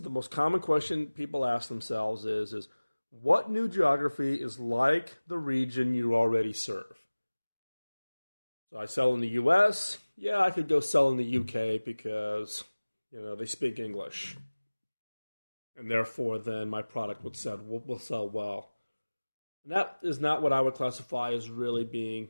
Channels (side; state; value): both; inverted; correlation -1.00